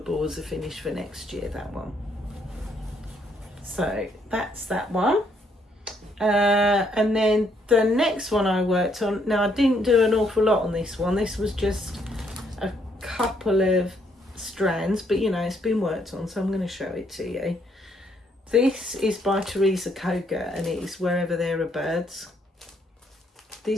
as a finish for next year, that one. So that's that one. And then the next one I worked on, now I didn't do an awful lot on this one. This was just a couple of strands, but you know, it's been worked on, so I'm going to show it to you. This is by Teresa Koga, and it is Wherever There Are Birds.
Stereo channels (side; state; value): both; normal; correlation 0.71